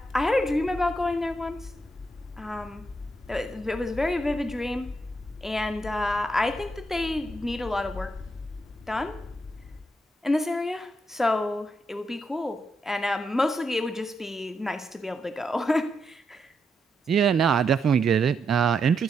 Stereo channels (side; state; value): both; normal; correlation 0.81